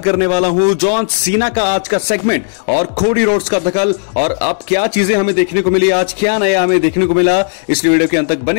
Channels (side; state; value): right; silent; digital silence